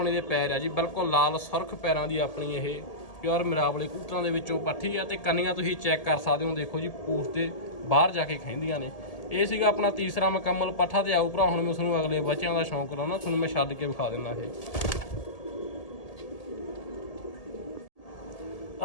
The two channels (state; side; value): late; right; 1.8 ms